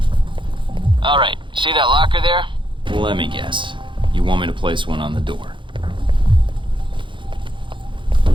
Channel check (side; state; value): left; late; 0.24 ms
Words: All right, see that locker there? Well, let me guess. You want me to place one on the door?